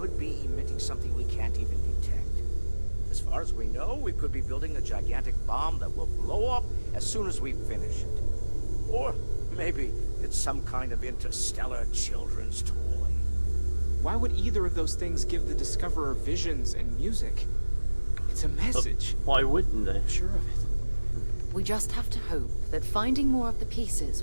be emitting something we can't even detect. As far as we know, we could be building a gigantic bomb that will blow up as soon as we finish it. Or maybe it's some kind of interstellar children's toy. Why would either of those things give the Discoverer visions and music? It's a message. Why wouldn't they? I'm sure of it. We just have to hope that finding more of the pieces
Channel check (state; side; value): inverted; both; correlation -1.00